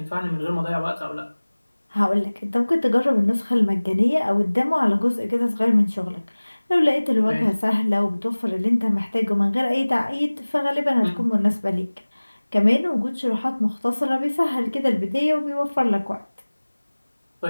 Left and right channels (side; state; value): both; inverted; correlation -1.00